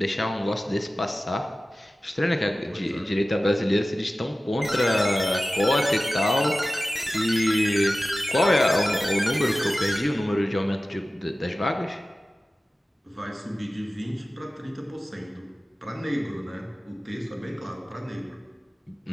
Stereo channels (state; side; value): normal; both; correlation 0.96